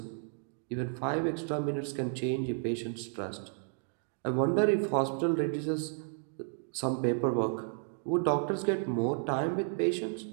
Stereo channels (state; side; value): silent; left; 56 dB below the other